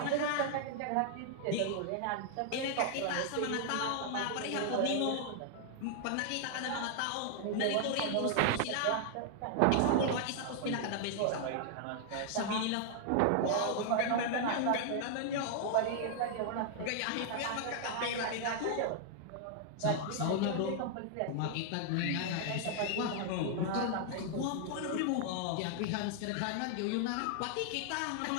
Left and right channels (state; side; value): different; both; correlation 0.00